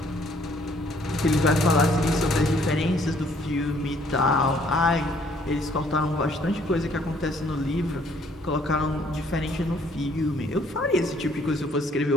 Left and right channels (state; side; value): normal; both; correlation 0.63